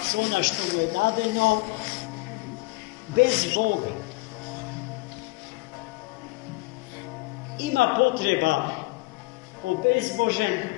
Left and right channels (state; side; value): quieter; right; 23.9 dB